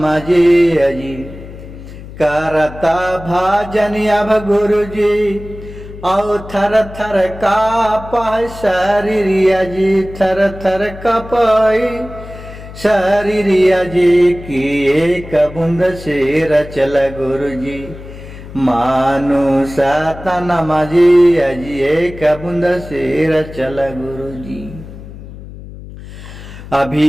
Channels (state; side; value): noise; left; hum, 15 dB below the sound